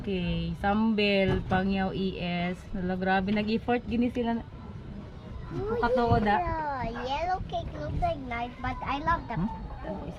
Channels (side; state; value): both; identical; correlation 1.00